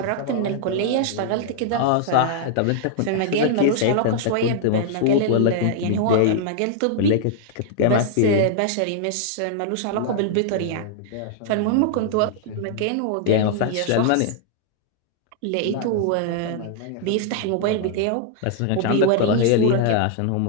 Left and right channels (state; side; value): different; both; correlation -0.01